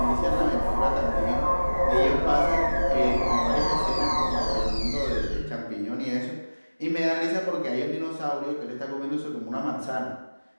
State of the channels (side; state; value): both; inverted; correlation -1.00